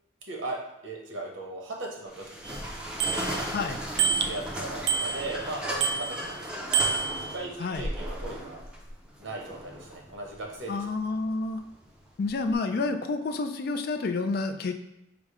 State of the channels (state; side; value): normal; both; correlation 0.18